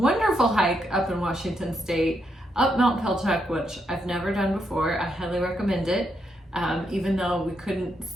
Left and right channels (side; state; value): both; normal; correlation 0.80